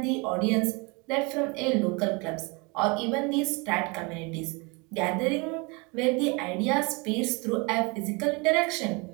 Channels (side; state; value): left; quieter; 28.7 dB